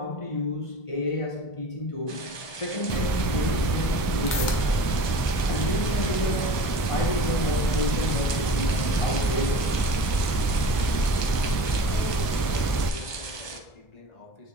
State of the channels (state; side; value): late; right; 1.2 ms